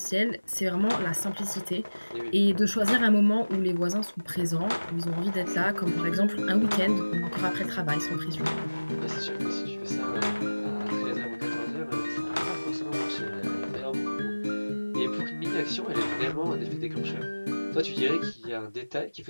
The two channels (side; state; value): both; inverted; correlation -1.00